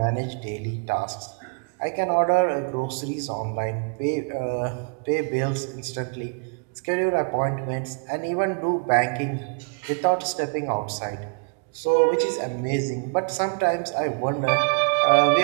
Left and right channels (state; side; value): quieter; left; 39.6 dB